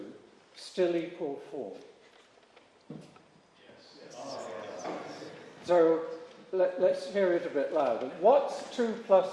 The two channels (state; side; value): identical; both; correlation 1.00